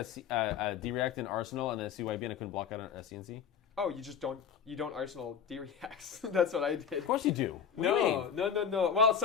a D-React in Arsenal and a CYB and I couldn't block out a CNC? Oh, you don't Arsenal D-Reacts. That's what I did. Of course you do. No. Well,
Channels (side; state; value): right; quieter; 7.6 dB